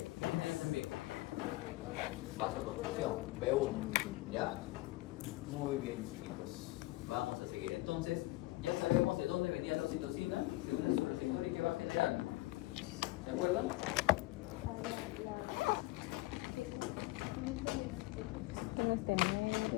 tiene ahí también? Vasoconstricción, B1, ¿ya? Muy bien, chicos. Vamos a seguir. Entonces, ya sabemos de dónde venía la oxitocina, de un su receptor y qué va a generar. ¿Se acuerdan?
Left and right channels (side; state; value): right; quieter; 19.5 dB